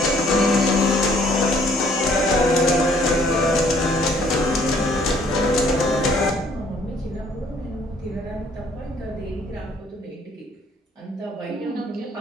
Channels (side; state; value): both; normal; correlation 0.61